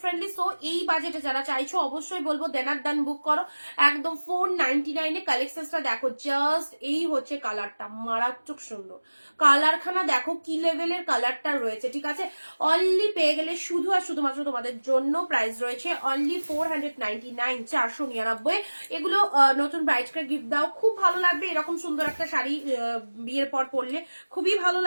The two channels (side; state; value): both; inverted; correlation -1.00